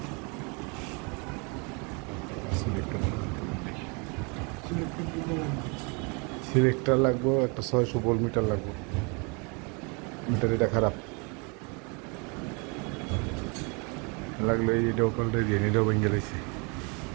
সিলেক্টার লাগবো একটা, 600 ভোল্ট মিটার লাগবে। মিটার এটা খারাপ লাগলো, এটাও পাল্টে দিয়ে এটাও ভেঙে গেছে।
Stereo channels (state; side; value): quieter; left; 32.1 dB